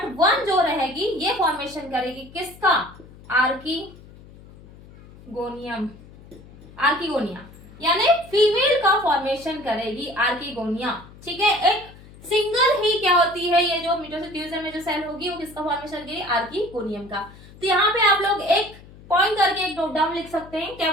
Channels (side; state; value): left; noise; hum, 21 dB below the sound